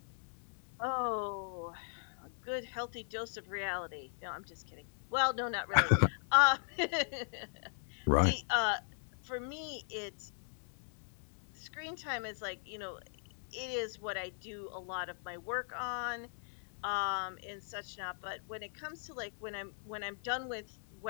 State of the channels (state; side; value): silent; right; digital silence